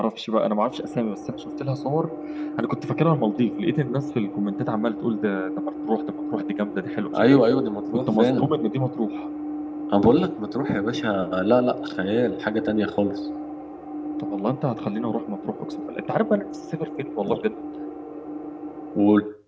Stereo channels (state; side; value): identical; both; correlation 1.00